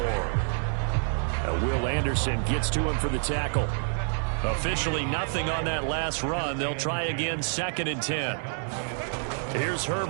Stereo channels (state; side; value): silent; left; 57 dB below the other